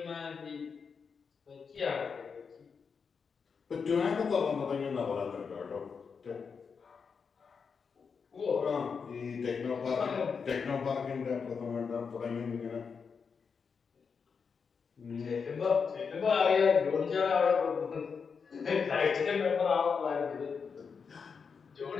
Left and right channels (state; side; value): quieter; right; 5.8 dB